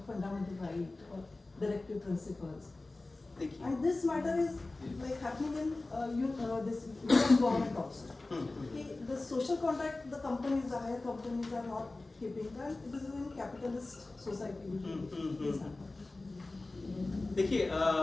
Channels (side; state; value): right; quieter; 3.1 dB